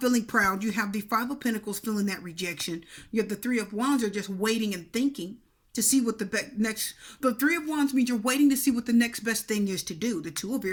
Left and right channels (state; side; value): identical; both; correlation 1.00